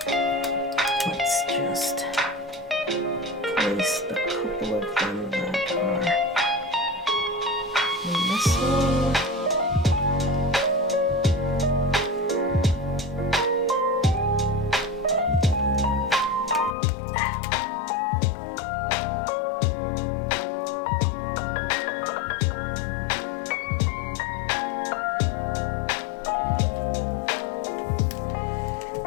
let's just place the couple of them that are missing.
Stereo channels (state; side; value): drops out; right; at 16.8 s